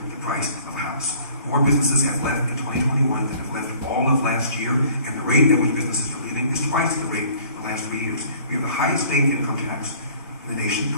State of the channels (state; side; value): inverted; both; correlation -0.53